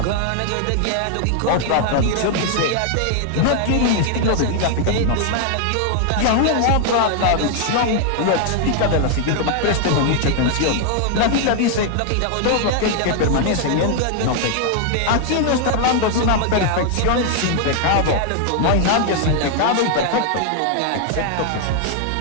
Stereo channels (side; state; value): both; different; correlation 0.00